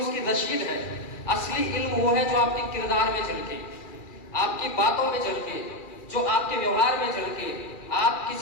उसकी रसीद है। असली इल्म वो है जो आपके किरदार में झलके, आपकी बातों में झलके, जो आपके व्यवहार में झलके। आप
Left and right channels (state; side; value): late; right; 2.4 ms